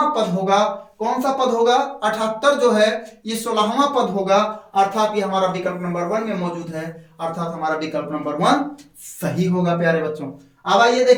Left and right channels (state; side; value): identical; both; correlation 1.00